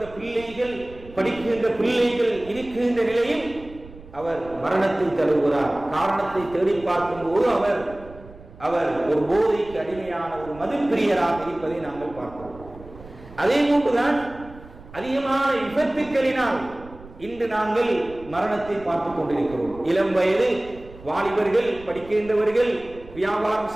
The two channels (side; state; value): right; noise; rumble, 19 dB below the sound